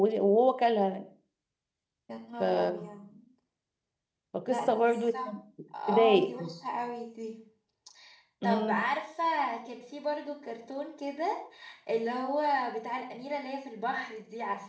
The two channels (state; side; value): identical; both; correlation 1.00